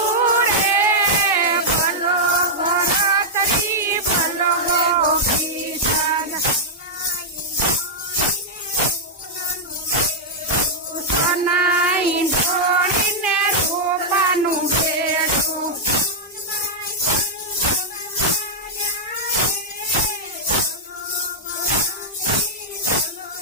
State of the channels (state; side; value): normal; both; correlation -0.05